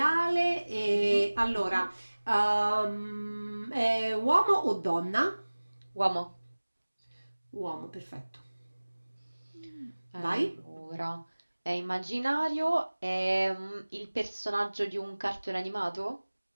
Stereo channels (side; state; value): both; inverted; correlation -1.00